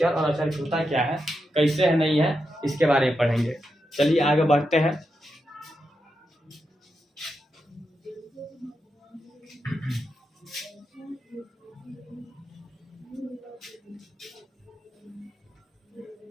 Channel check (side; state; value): both; normal; correlation 0.86